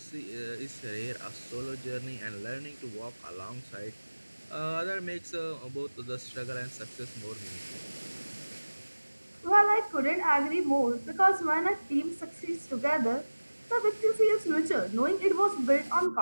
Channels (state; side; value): inverted; both; correlation -1.00